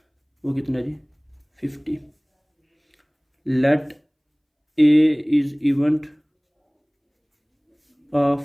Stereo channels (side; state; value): both; identical; correlation 1.00